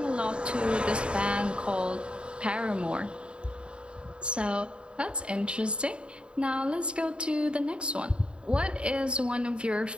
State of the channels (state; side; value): late; left; 0.054 ms